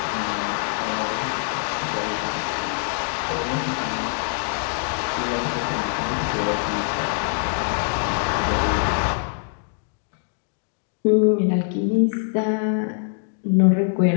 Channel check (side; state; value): right; silent; 63 dB below the other